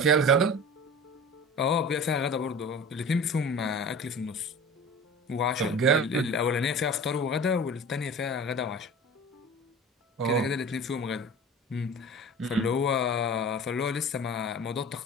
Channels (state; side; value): normal; both; correlation 0.37